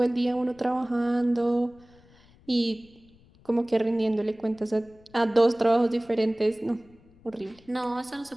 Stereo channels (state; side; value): noise; left; rumble, 28 dB below the sound